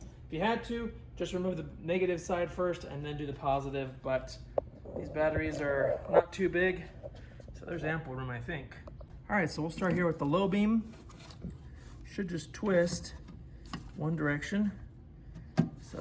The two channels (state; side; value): identical; both; correlation 1.00